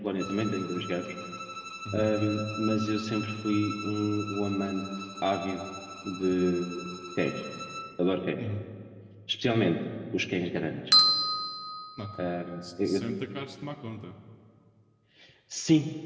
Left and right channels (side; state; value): both; identical; correlation 1.00